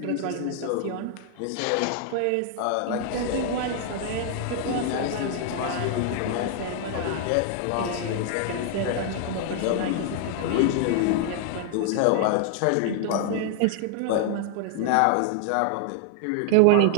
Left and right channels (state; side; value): different; both; correlation 0.00